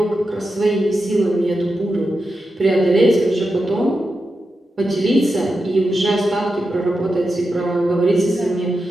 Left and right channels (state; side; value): normal; both; correlation 0.89